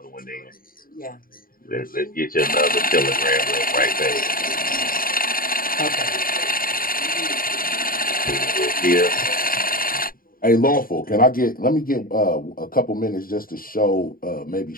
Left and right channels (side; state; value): right; late; 0.41 ms